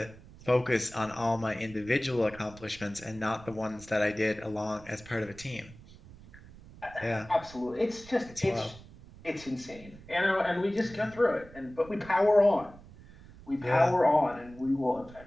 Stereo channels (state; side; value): noise; right; rumble, 20 dB below the sound